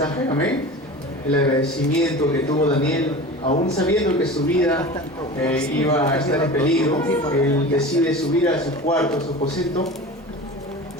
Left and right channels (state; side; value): normal; both; correlation 0.34